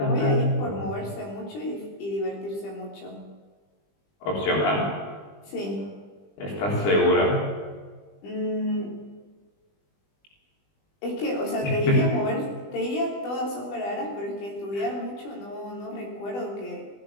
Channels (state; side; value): late; right; 20 ms